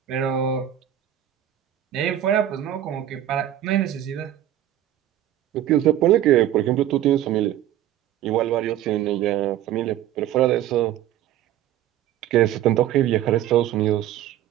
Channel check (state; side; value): quieter; left; 12.1 dB